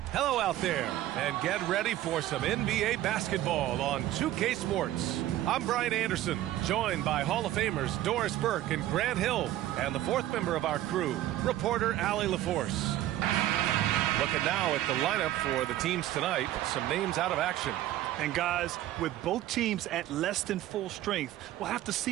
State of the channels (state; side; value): quieter; left; 13.9 dB